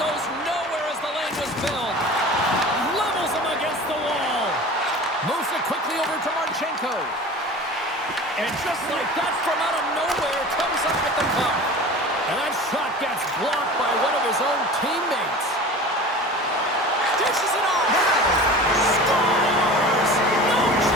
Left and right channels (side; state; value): both; normal; correlation 0.37